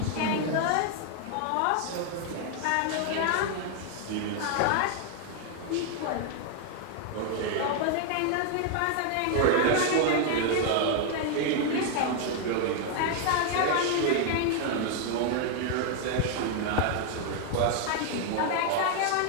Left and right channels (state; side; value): different; both; correlation 0.00